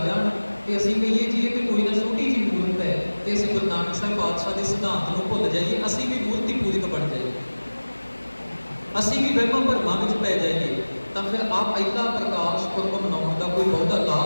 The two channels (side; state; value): both; inverted; correlation -1.00